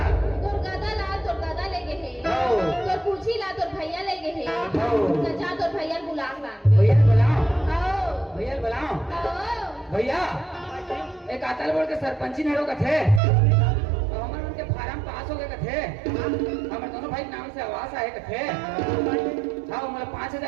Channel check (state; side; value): drops out; left; at 13.2 s